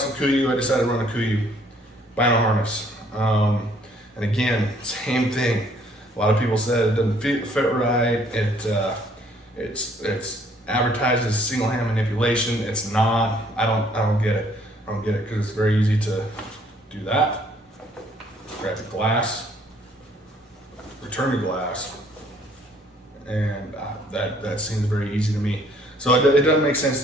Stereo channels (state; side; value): normal; both; correlation 0.62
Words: with Kuiu, I decided to run a Kuiu vinyl harness. And again, same thing. A lot of people said it doesn't fit right. It's advertised as single hand manipulation. It's not. I don't get it. I don't get it because it's very easy to do that. Grab the glass, return the glass, and that seems very easy to me. So it doesn't make sense